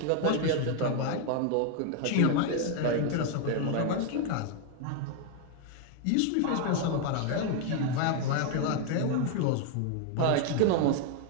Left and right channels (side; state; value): both; different; correlation 0.01